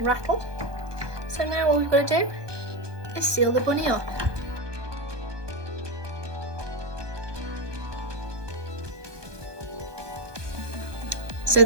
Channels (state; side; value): late; left; 1.2 ms